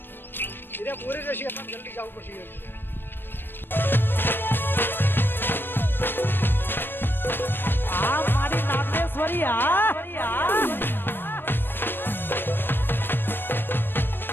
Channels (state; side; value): late; right; 0.097 ms